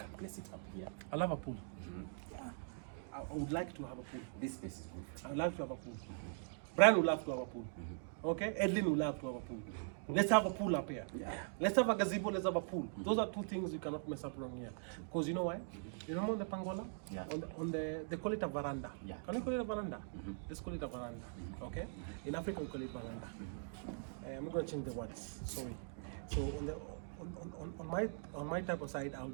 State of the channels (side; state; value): left; silent; digital silence